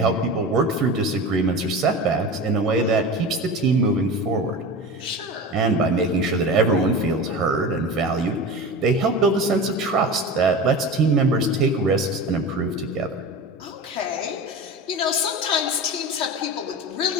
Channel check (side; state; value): both; normal; correlation 0.30